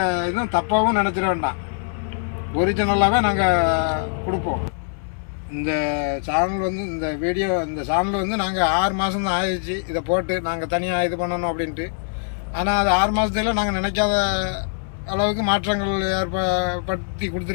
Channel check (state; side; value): silent; right; digital silence